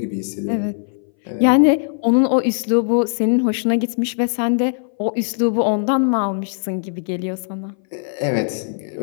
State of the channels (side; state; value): right; silent; 60 dB below the other